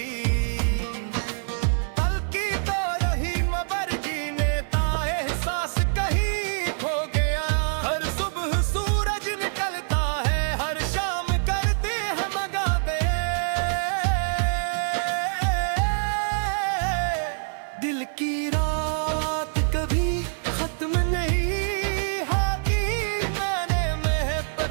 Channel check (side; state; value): left; silent; 55 dB below the other